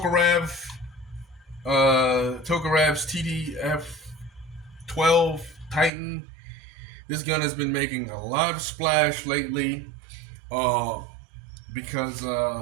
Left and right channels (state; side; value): drops out; left; at 5.9 s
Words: TDF-12 Titan. This gun has been making a lot of splash lately because